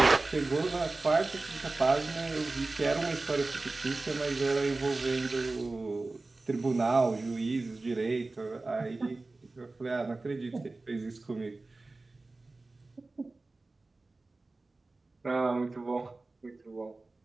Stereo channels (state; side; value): quieter; left; 3.3 dB